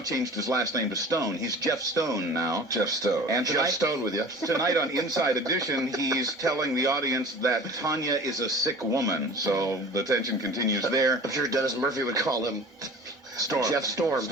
his last name to Stone. He's Jeff Stone now. Jeff Stone. And Jeff tonight, Stone with you. tonight on Inside Edition, he's telling the audience that Tanya is a sick woman. So the tension continues there. I'm sure Dennis Murphy would call him Storm. Jeff Storm.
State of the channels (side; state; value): both; normal; correlation 0.41